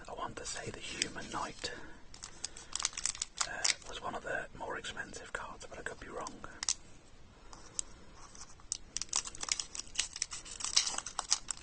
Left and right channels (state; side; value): identical; both; correlation 1.00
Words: want to say the Human Knight was one of the more expensive cards, but I could be wrong.